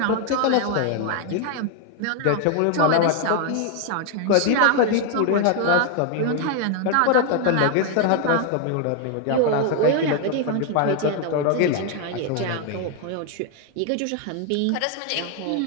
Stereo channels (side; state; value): both; different; correlation 0.00